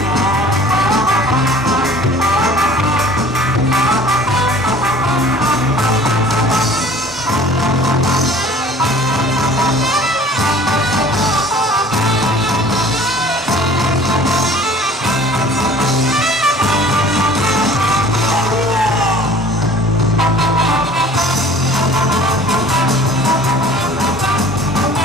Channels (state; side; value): normal; both; correlation 0.48